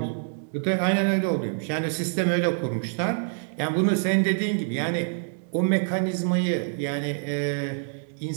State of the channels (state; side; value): silent; left; digital silence